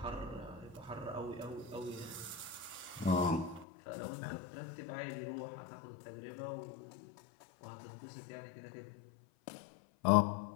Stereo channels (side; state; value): right; drops out; at 3.7 s